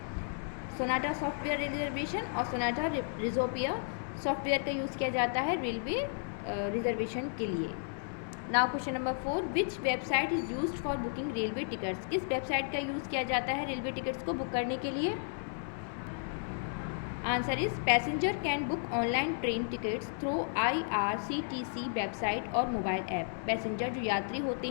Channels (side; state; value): right; silent; 56 dB below the other